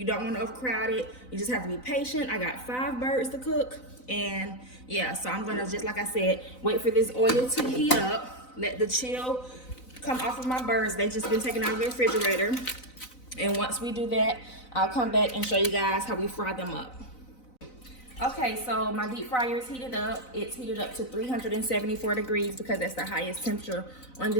don't want to overcrowd it. You just have to be patient. I got 5 birds to cook, and yeah, so I'm gonna, just like I said, wait for this oil to heat up, let the chill come off of my birds. They've just been taken out of the refrigerator, and once we do that, I'll come back and show you guys how we fry them up. Okay, so my deep fryer is heated up. It's heated up to 374 degrees because that's the highest temperature on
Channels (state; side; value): late; right; 4.0 ms